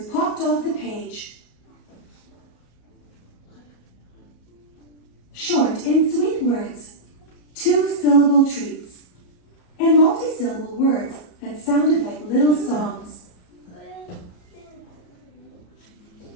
popped off the page. Short and sweet words, two-syllable treats, and multi-syllable words that sounded like little songs.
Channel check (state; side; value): late; right; 34 ms